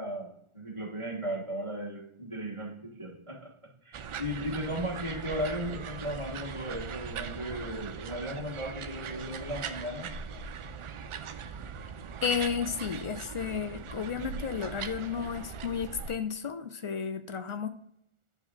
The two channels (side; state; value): left; late; 1.4 ms